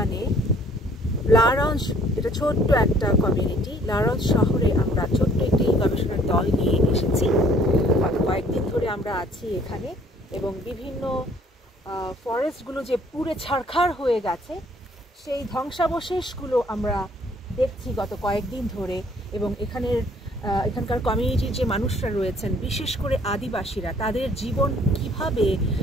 লারঞ্জ, এটা ছোট্ট একটা কমিউনিটি, লারঞ্জ শহরে আমরা ছোট্ট একটি গবেষণার দল নিয়ে এসেছি। গত কয়েকদিন ধরে আমরা আছি এখানে এবং বিভিন্ন ফরেস্টগুলো যে পুড়ে ছারখার হয়ে গেছে সেই ধ্বংসাবশেষগুলো আমরা দেখছি গত কয়েকদিন ধরে। এবং এখানকার কমিউনিটির যে মানুষরা রয়েছেন, বিশেষ করে আদিবাসীরা, তাদের জীবন কিভাবে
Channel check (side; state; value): both; normal; correlation 0.59